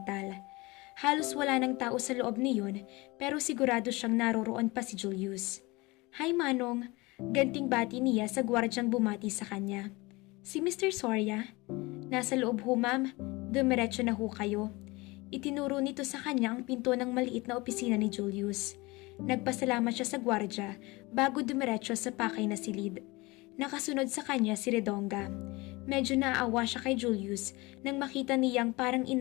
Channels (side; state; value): right; quieter; 23.3 dB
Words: Halos wala ng tao sa loob niyon pero sigurado siyang naroroon pa si Julius. Hi Manong, ganting bati niya sa gwardyang bumati sa kanya. Si Mr. Soria? Nasa loob ho ma'am, dumiretso na ho kayo. Itinuro nito sa kanya ang pinto ng maliit na opisina ni Julius. Nagpasalamat siya sa gwardya bago dumiretso sa pakay na silid. Nakasunod sa kanya si Redonga. Medyo naaawa siya kay Julius nang makita niyang parang